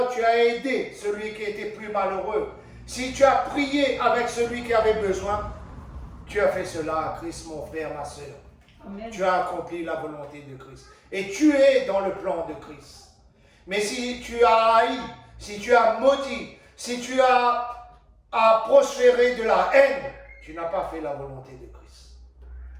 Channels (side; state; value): both; identical; correlation 1.00